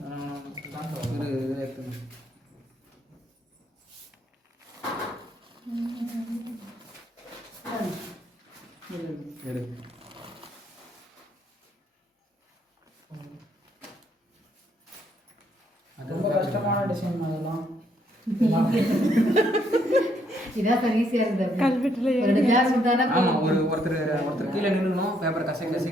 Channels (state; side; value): normal; both; correlation 0.71